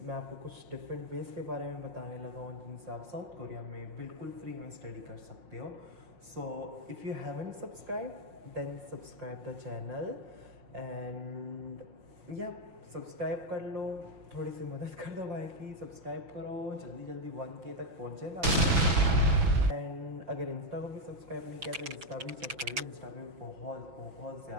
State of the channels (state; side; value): late; left; 6.1 ms